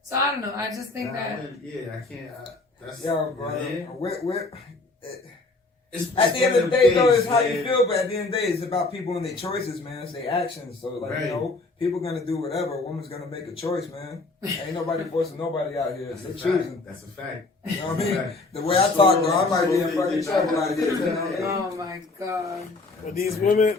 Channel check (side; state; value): right; quieter; 3.4 dB